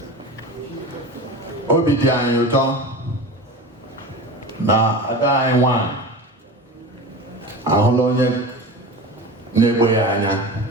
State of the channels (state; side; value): normal; both; correlation 0.31